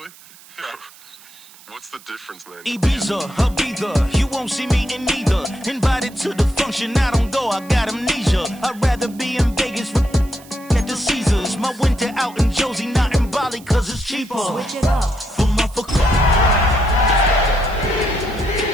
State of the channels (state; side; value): noise; right; hiss, 22 dB below the sound